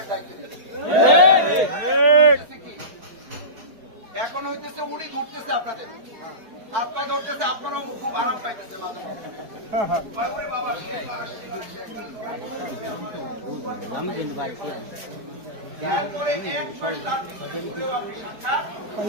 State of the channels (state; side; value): late; left; 4.7 ms